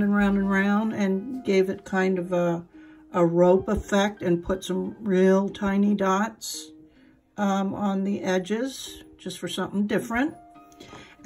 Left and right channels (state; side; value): identical; both; correlation 1.00